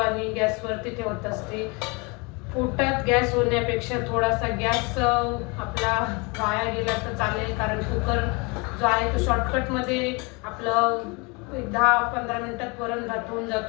गॅसवरती ठेवत असते. पोटात गॅस होण्यापेक्षा थोडासा गॅस आपला वाया गेला तर चालेल, कारण कुकर जो आहे तो शॉर्टकटमध्ये आपलं 10-15 मिनिटात वरण भात होऊन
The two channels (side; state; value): right; quieter; 29.1 dB